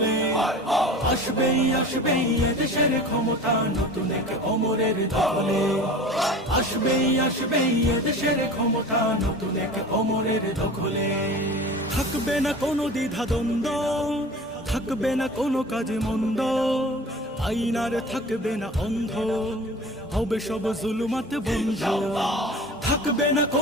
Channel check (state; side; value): normal; both; correlation 0.38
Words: আসবেই এদেশের ক্ষমতা নতুন এক অমরের দখলে। আসবেই এদেশের ক্ষমতা নতুন এক অমরের দখলে। থাকবে না কোনো দ্বিধা দ্বন্দ্ব, থাকবে না কোনো কাজে মন্দ, আইন আর থাকবে না অন্ধ, হবে সব জুলুমাত বন্ধ। থাকবে না